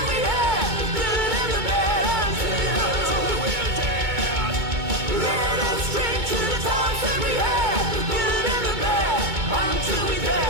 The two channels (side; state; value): left; late; 2.2 ms